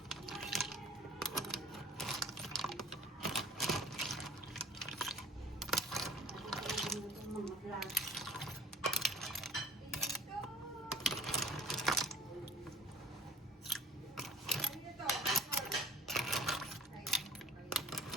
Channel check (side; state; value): both; normal; correlation 0.48